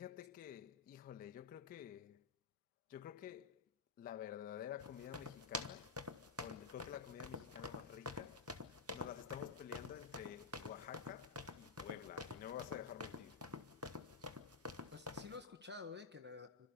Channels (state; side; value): quieter; right; 4.9 dB